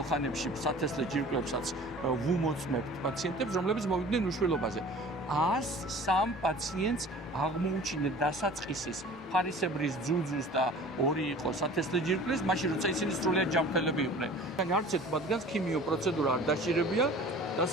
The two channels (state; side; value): normal; both; correlation 0.44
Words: ხანებში სათესლე ჯირკვლებსაც ვუმოწმებთ პაციენტებს, რომლებიც მოვიდნენ უშვილობაზე. 103 პაციენტს აღმოუჩინეთ დასაწყისის ფარისებრის ძუძუს და 2 იყო სათესლე ჯირკვლის, მაშინ როცა ისინი სრულიად ჯანმრთელები იყვნენ. არც ერთ მათგანს ქიმიო პროცედურა არ დაშირებია